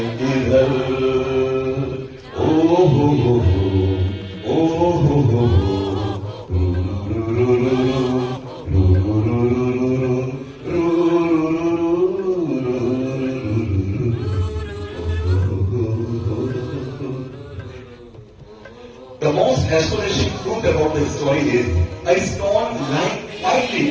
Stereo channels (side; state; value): both; identical; correlation 1.00